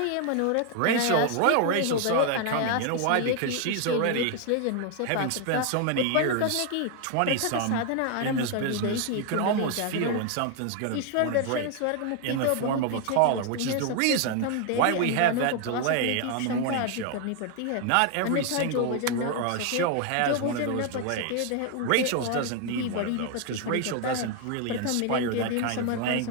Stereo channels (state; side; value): different; both; correlation 0.00